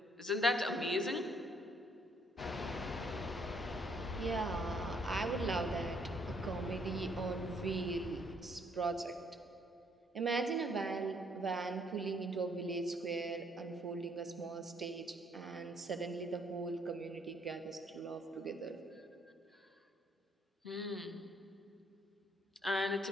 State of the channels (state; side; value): normal; both; correlation 0.67